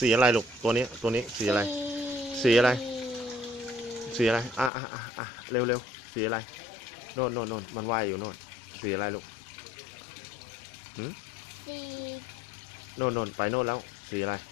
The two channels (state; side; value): drops out; right; at 4.7 s